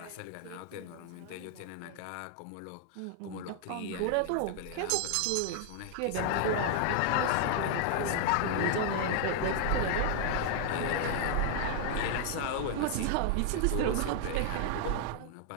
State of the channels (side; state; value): both; different; correlation 0.00